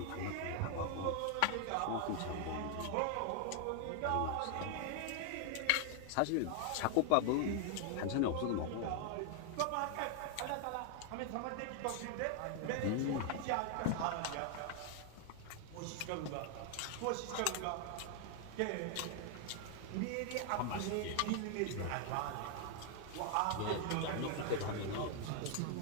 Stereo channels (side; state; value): both; different; correlation 0.00